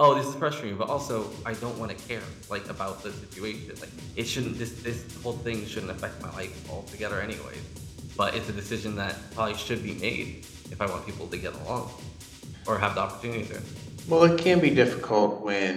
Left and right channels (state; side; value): identical; both; correlation 1.00